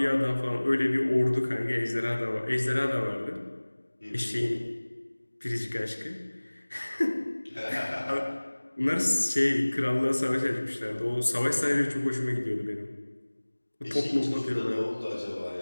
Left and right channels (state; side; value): inverted; both; correlation -1.00